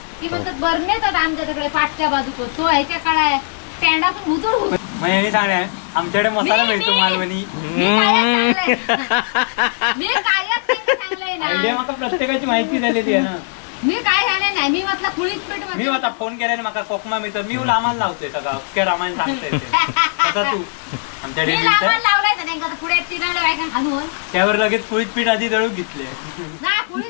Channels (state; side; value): silent; right; 66 dB below the other